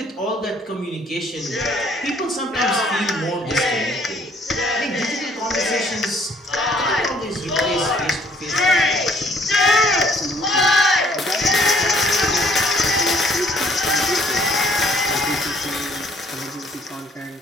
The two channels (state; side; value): normal; both; correlation 0.61